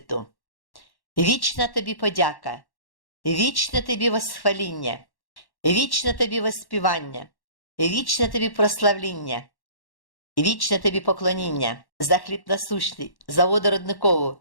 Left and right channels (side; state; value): right; late; 1.1 ms